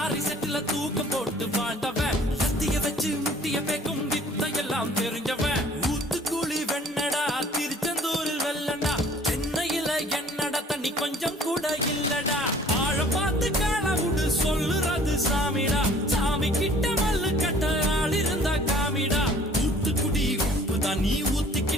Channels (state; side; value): normal; both; correlation 0.53